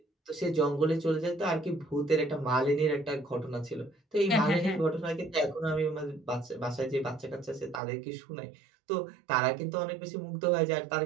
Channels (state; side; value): drops out; left; at 7.8 s